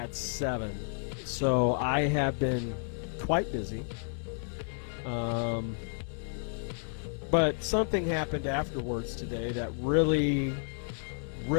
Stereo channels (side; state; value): right; silent; digital silence